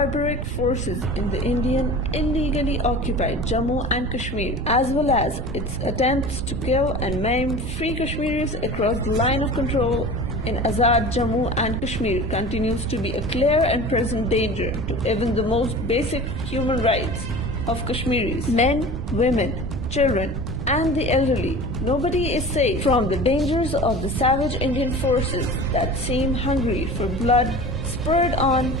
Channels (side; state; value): right; noise; rumble, 6 dB below the sound